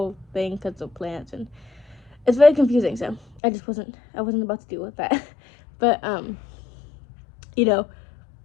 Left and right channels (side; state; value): right; drops out; at 3.4 s